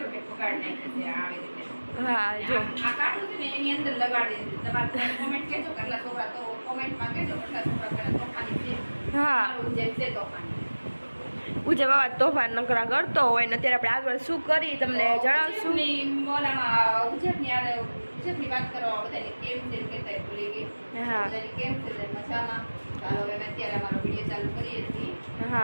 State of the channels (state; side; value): inverted; both; correlation -1.00